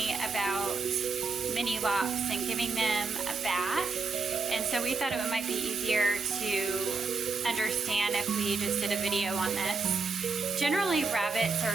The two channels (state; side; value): quieter; left; 4.3 dB